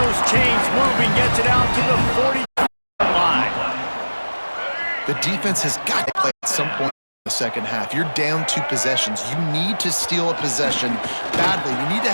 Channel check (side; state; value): both; inverted; correlation -1.00